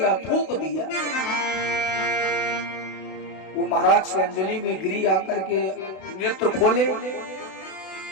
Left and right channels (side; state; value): right; late; 31 ms